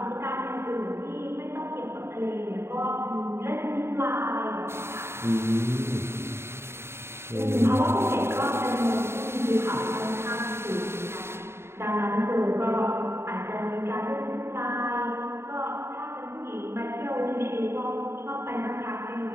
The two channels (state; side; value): late; left; 0.12 ms